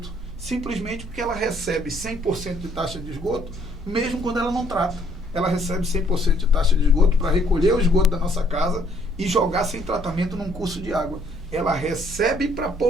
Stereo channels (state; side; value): normal; both; correlation 0.64